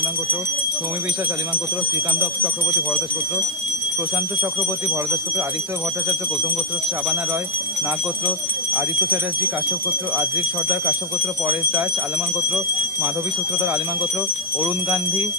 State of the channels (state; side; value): noise; right; hiss, 15 dB below the sound